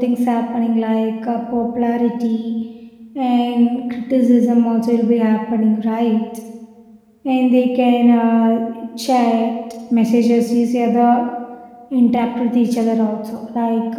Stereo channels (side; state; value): both; identical; correlation 1.00